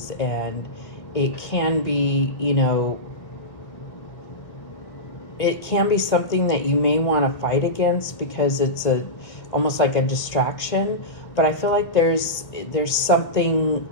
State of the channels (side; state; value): right; late; 1.6 ms